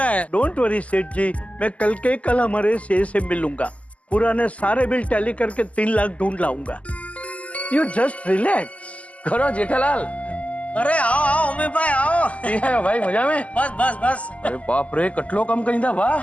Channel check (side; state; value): right; late; 0.068 ms